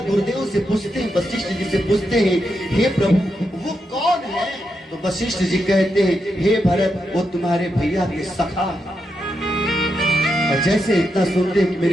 गुरुदेव से पूछते हैं, वशिष्ठ जी से पूछते हैं, हे प्रभु वो कौन है? तो वशिष्ठ जी कहते हैं, हे भरत वो तुम्हारे भैया के सखा। और जैसे इतना सुनते हैं कि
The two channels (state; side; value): normal; both; correlation 0.84